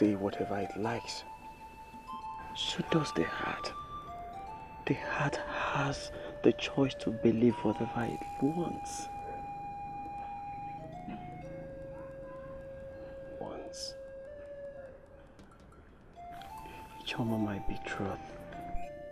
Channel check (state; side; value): identical; both; correlation 1.00